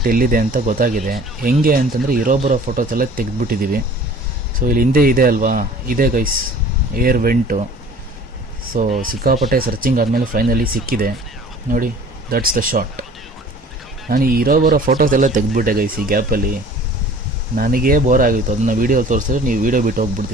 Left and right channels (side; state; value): both; normal; correlation 0.47